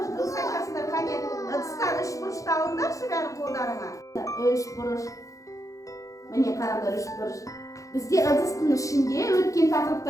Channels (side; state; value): right; late; 0.16 ms